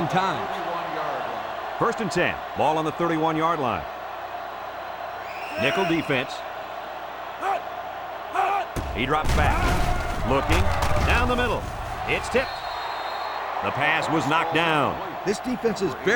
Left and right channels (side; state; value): both; identical; correlation 1.00